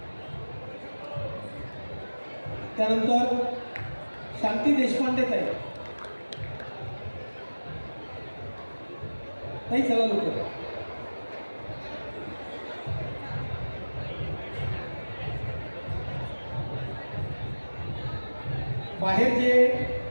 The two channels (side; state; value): both; inverted; correlation -1.00